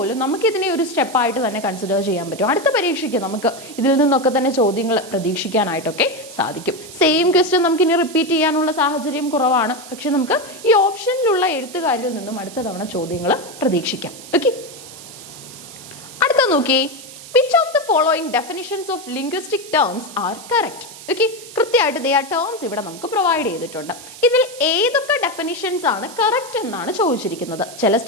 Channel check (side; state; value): right; noise; hiss, 16 dB below the sound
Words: നമുക്ക് ഇതിനെ ഒരു സ്റ്റെപ്പായിട്ട് തന്നെ കൺസിഡർ ചെയ്യാൻ പറ്റും. അടുത്ത പരീക്ഷയ്ക്ക് നമുക്ക് ഇതിൽ നിന്നൊക്കെ തന്നെ ചോദ്യങ്ങൾ പ്രതീക്ഷിക്കാനായിട്ടൊക്കെ സാധിക്കും. സെയിം ക്വസ്റ്റ്യൻ നമുക്ക് ഇനി റിപ്പീറ്റ് ചെയ്യാനുള്ള സാഹചര്യം കുറവാണ്. പക്ഷെ നമുക്ക് ഈ ഓപ്ഷനിലുള്ള എഴുത്തുകാരിൽ നിന്നും അടുത്ത തവണ ചോദ്യങ്ങൾ പ്രതീക്ഷിക്കാം. ഓക്കെ, അടുത്ത നോക്കി. Which of the following definitions of linguistic terms are correct? Okay, കൃത്യമായിട്ട് ദേ ആ ടേംസ് ഇവിടെ നമുക്ക് പ്രൊവൈഡ് ചെയ്തിട്ടുണ്ട്. ഇതിൽ ഏതൊക്കെ ഡെഫിനിഷൻസ് ആണ് കറക്റ്റ് എന്നാണ് ചോദിച്ചിരിക്കുന്നത്. ചില